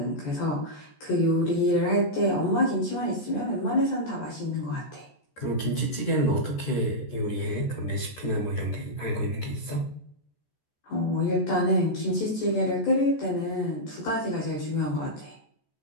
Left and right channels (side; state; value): right; late; 14 ms